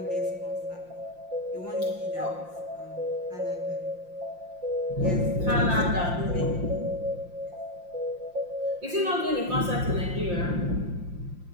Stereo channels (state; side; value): late; left; 5.7 ms